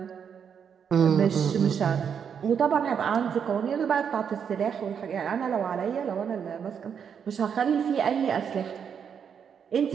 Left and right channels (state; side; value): quieter; left; 7.4 dB